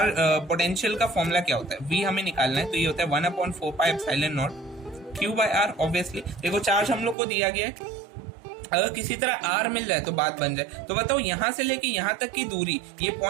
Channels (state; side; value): drops out; left; at 7.2 s